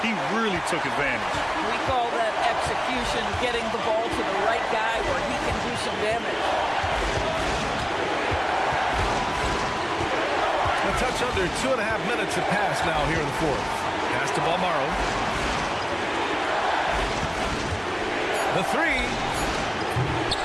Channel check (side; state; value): both; identical; correlation 1.00